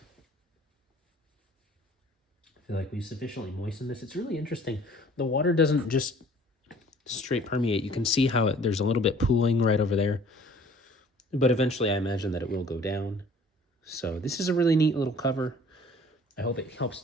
we sufficiently moisten this. It's really interesting. The water doesn't just straight permeate. You can see how there's a little bit pooling right over there. But eventually I imagine that it will go down. So this is a really neat little cover. I hope it helps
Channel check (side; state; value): both; normal; correlation 0.52